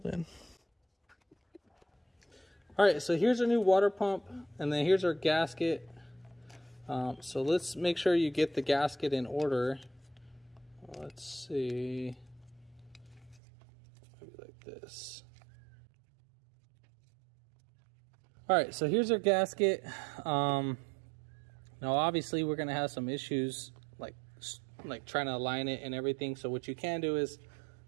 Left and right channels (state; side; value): drops out; left; at 13.4 s